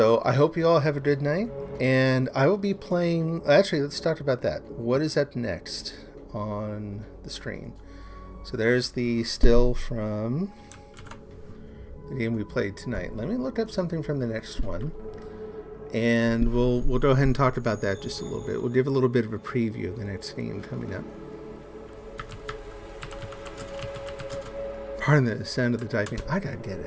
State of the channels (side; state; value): both; identical; correlation 1.00